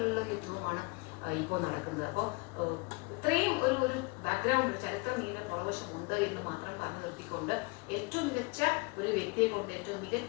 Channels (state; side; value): quieter; right; 29.3 dB